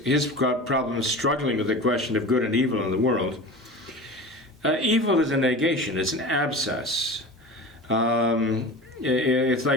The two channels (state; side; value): normal; both; correlation 0.33